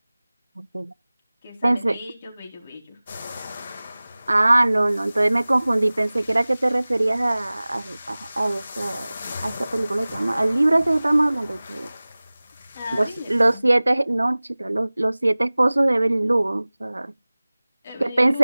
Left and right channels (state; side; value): inverted; both; correlation -0.99